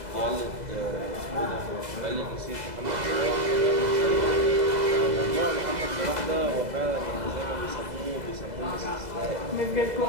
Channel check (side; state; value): left; late; 2.0 ms